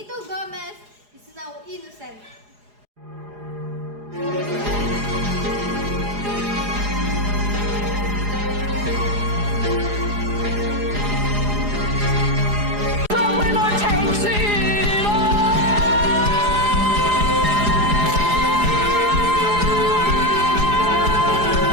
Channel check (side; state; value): left; late; 4.8 ms